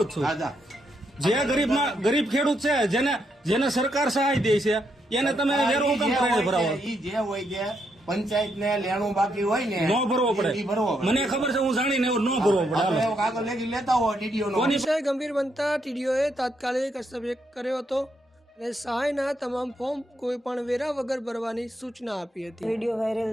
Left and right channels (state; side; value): normal; both; correlation 0.78